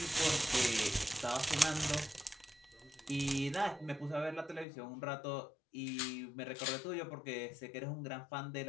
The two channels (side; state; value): right; drops out; at 4.7 s